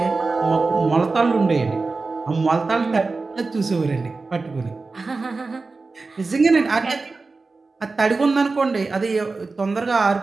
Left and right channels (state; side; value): quieter; left; 3.8 dB